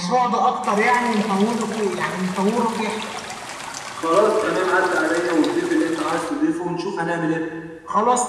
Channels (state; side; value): identical; both; correlation 1.00